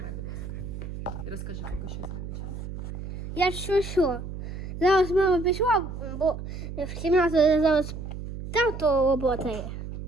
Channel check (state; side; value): noise; right; hum, 8 dB below the sound